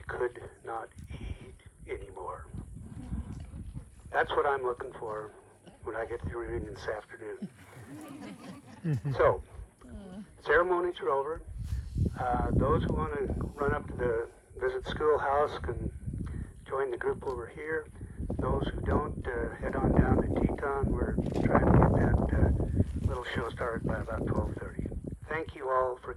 could not eat anymore. That's what I'm looking for when I get to the reunion this afternoon. So, ceremonies are over. Those who want to run up to the visit schoolhouse can join the group over here. Those who don't, head on down to Teton. We're trying to get that little show started by about 12:30. Thank you all for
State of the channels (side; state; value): both; identical; correlation 1.00